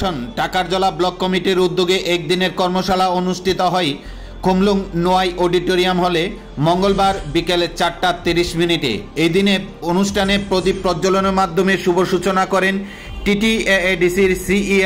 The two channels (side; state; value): both; identical; correlation 1.00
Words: टाकारजला ब्लक कमिटिर उद्योगे एकदिनेर कर्मशाला अनुष्ठित हय खुमलुंग নোয়াই অডিটোরিয়াম हले मंगलवार बिकेले 4:30 এই দিনে অনুষ্ঠানে প্রদীপ প্রজ্বলনের মাধ্যমে শুভ সূচনা করেন টিটিএডিসির